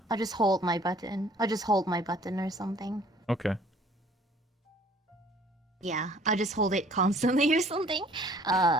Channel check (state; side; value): normal; both; correlation 0.55